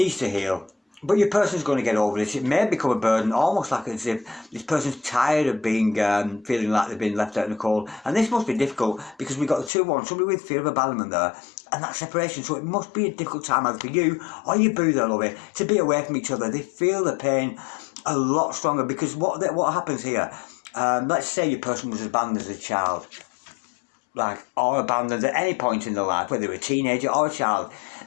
to heal. But your person's going to get over this. It may become a burden, almost like as if this person's tired of being feeling like they've been left out in the cold. And this must be difficult because we've got the 2-1, somebody with fear of abandonment there, and that separation. So it must be a difficult time either for you or your boo there, lovey, to be away from each other. They feel the pain a lot stronger because what happens here, let's say your person was abandoned as a child, or abandoned at any point in their life, whether they're a teenager or a child,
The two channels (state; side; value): drops out; right; at 9.7 s